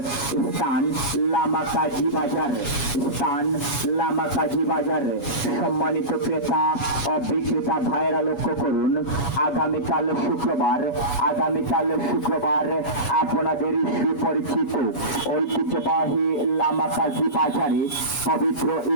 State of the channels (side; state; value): right; late; 7.2 ms